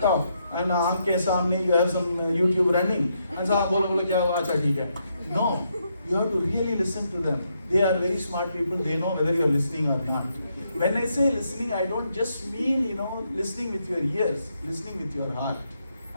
and आँख के सामने you have some YouTube running, and so बोलो क्या हुआ, अच्छा ठीक है. No, you have to really listen to them. They are very smart people. They know whether you are listening or not. When I say listening, I don't just mean listening with your ears, listening with your heart.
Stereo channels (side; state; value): both; inverted; correlation -0.78